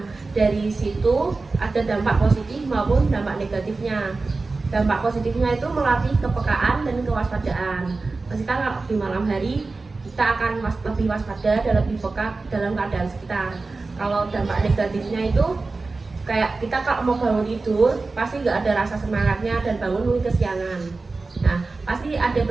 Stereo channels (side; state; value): left; quieter; 3.7 dB